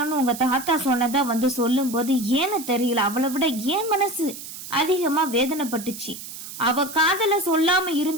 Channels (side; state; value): right; noise; hiss, 11 dB below the sound